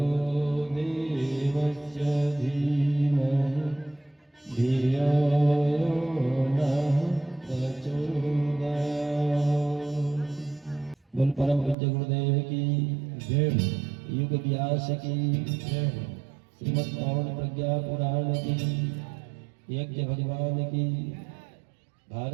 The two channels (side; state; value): left; drops out; at 11.8 s